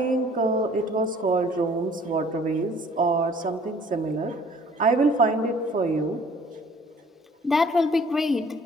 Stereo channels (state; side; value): normal; both; correlation 0.54